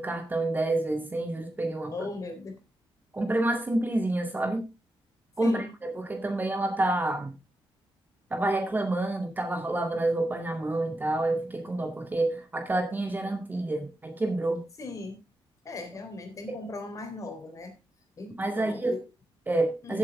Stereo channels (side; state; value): both; normal; correlation 0.88